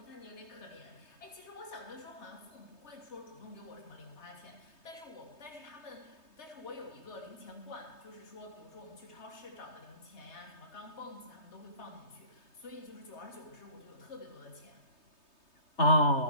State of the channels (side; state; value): right; late; 3.2 ms